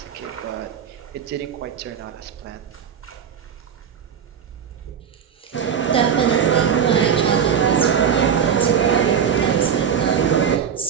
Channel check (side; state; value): left; quieter; 7.8 dB